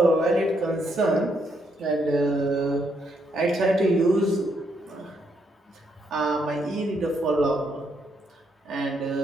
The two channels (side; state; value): both; normal; correlation 0.75